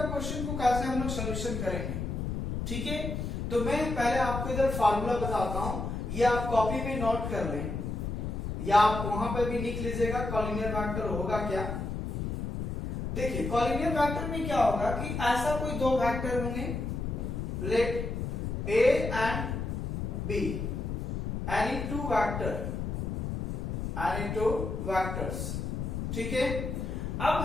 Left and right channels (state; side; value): noise; left; rumble, 3 dB below the sound